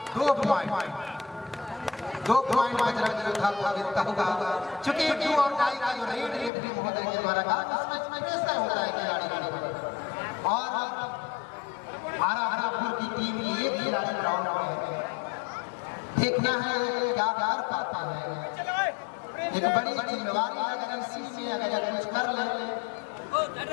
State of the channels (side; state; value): right; drops out; at 6.5 s